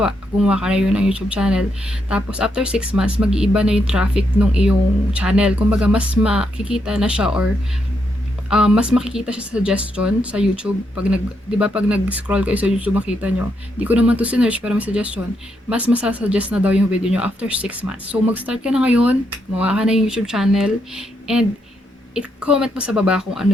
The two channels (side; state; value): both; normal; correlation 0.79